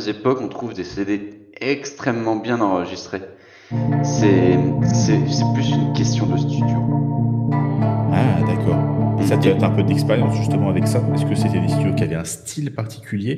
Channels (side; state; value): both; identical; correlation 1.00